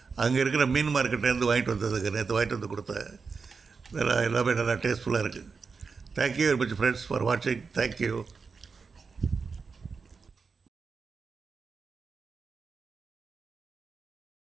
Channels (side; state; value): left; quieter; 5.0 dB